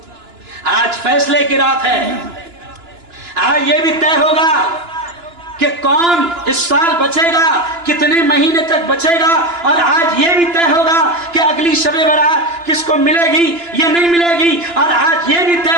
आज फैसले की रात है। आज ये भी तय होगा कि कौन इस साल बचेगा, कितने महीने तक बचेगा। और आज ये भी तय होगा कि अगली शबे बारात किसको मिलेगी या नहीं मिलेगी। और आज ये भी तय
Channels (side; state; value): left; late; 2.9 ms